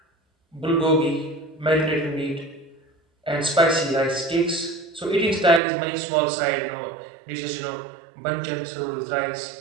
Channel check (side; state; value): left; drops out; at 5.6 s